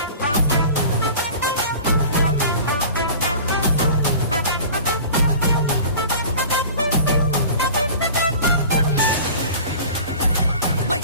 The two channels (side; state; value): both; inverted; correlation -0.40